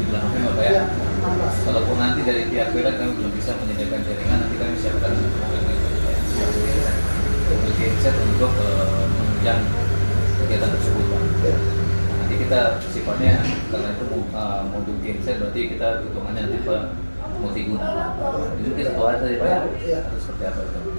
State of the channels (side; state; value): both; inverted; correlation -1.00